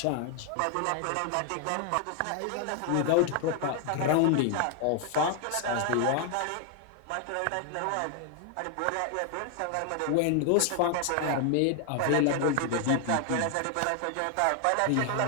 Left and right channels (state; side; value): different; both; correlation 0.00